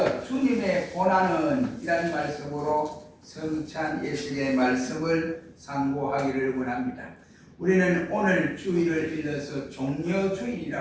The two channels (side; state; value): both; identical; correlation 1.00